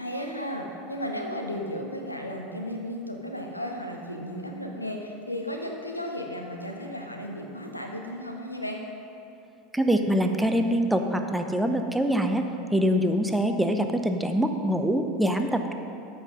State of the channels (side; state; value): both; normal; correlation 0.57